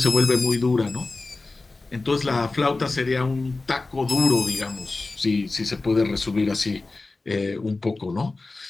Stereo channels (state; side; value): quieter; right; 3.4 dB